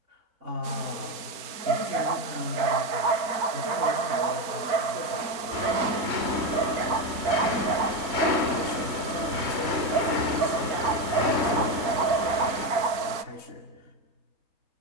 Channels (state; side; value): late; left; 4.3 ms